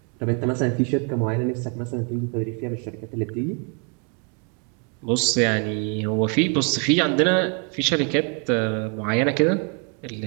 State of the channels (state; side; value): quieter; left; 37.5 dB